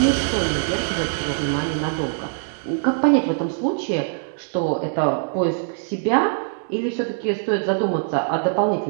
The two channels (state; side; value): silent; left; 64 dB below the other